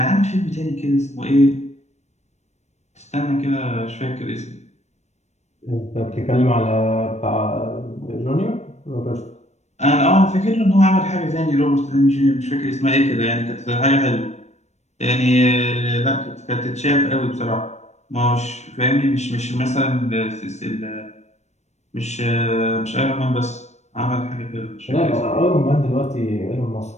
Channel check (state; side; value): late; right; 0.32 ms